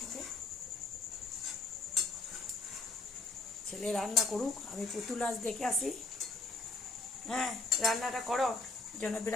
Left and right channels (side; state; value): right; quieter; 3.4 dB